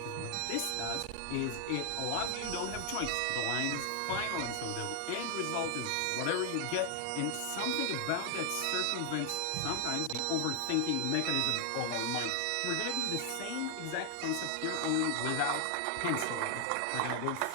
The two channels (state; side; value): different; both; correlation 0.00